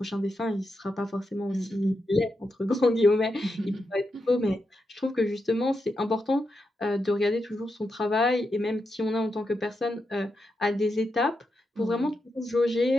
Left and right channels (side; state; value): both; normal; correlation 0.86